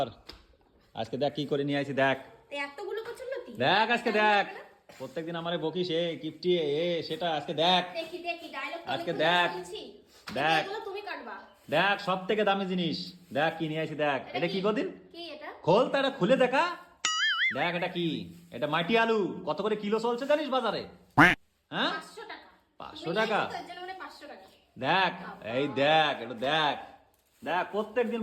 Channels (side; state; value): both; identical; correlation 1.00